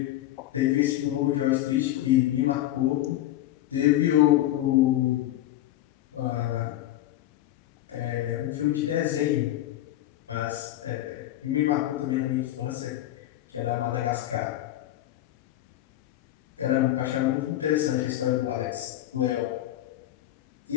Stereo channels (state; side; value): quieter; right; 14.1 dB